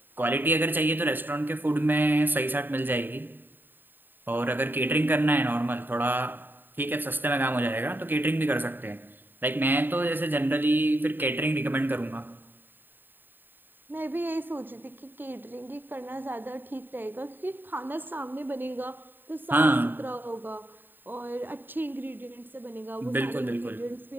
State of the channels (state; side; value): late; left; 0.093 ms